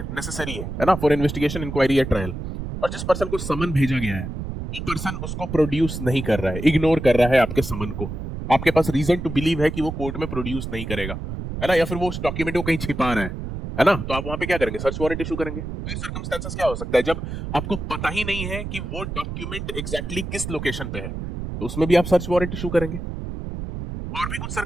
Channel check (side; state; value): right; noise; rumble, 6 dB below the sound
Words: है ना, फॉर इन्वेस्टिगेशन, इंक्वायरी या ट्रायल, और जिस पर्सन को समन भेजा गया है वो पर्सन उसको प्रोड्यूस नहीं कर रहा है, इग्नोर कर रहा है आपके समन को, आपके पास रीजन टू बिलीव है कि वो कोर्ट में प्रोड्यूस नहीं करेगा, है ना, या फिर वो उस डॉक्यूमेंट को कहीं छिपा रहा है ना, तो आप वहां पे क्या करेंगे? सर्च वारंट इशू करेंगे। सर्कमस्टेंसेस क्या हो सकता है? जब आपको पता ही नहीं है कि वो डॉक्यूमेंट एग्जैक्टली किस लोकेशन पे है, तो उसमें भी आप सर्च वारंट इशू करेंगे। और भी कुछ